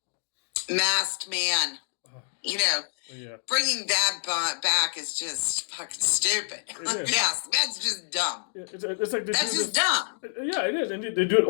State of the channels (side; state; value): right; silent; digital silence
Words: masked man. You know, bringing that back is just fucking stupid. Yes, that's just dumb. It's like that's just dumb. Yeah, it is, and they do it